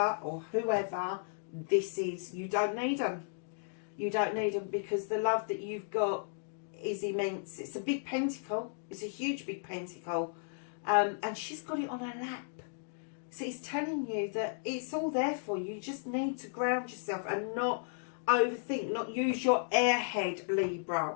or whoever this is. You don't need them. You don't need them, because the love that you've got is immense. It's a big pentacle. It's a huge big pentacle. And she's got it on her lap. So it's telling you that it's all there for you. You just need to ground yourself and not overthink, not use your airhead, Libra,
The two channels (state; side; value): silent; right; digital silence